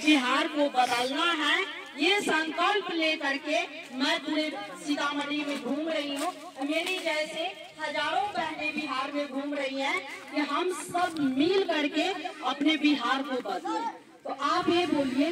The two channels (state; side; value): identical; both; correlation 1.00